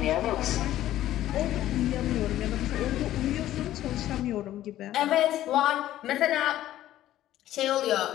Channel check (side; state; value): right; quieter; 13.5 dB